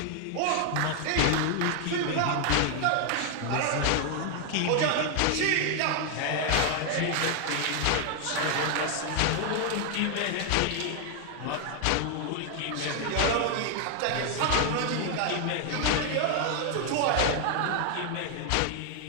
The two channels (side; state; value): both; different; correlation 0.00